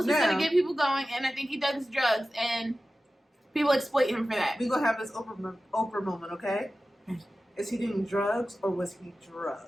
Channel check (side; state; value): both; normal; correlation 0.95